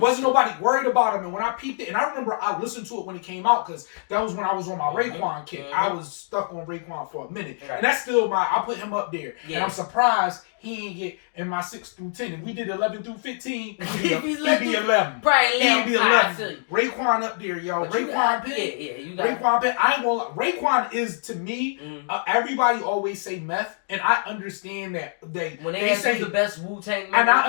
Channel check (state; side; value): silent; right; digital silence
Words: nobody worried about him. And when I peeped it, and I remember I listened to it when it came out because that was when I was on my Raekwon kick. I was stuck on Raekwon for a minute, and that's still I put him up there. And I'm surprised he ain't get in my 6 through 10. If we did 11 through 15, he'd be 11. Probably He'd be 11. Raekwon up there, yo. Raekwon Penn. Yeah, you got Raekwon Penn. I ain't gonna lie. Raekwon is, to me, everybody always say Meth, and I understand that when they say the best Wu-Tang member, and